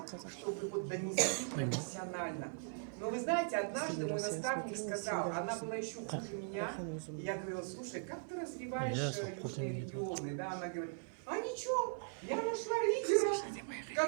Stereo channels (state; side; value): silent; left; 51 dB below the other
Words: чтобы вот донести профессионально. Но вы знаете, однажды мой наставник сказал, она была еще хуже меня, и я говорила, слушай, как ты развиваешь южные регионы? Да, она говорит, а ничего, я нашла лидера,